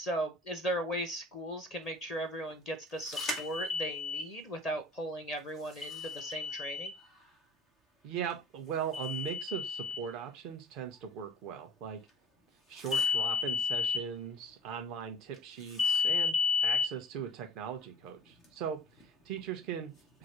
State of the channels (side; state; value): both; normal; correlation 0.45